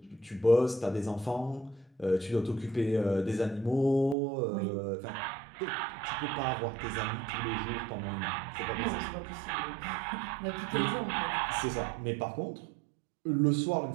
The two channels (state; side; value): drops out; left; at 4.2 s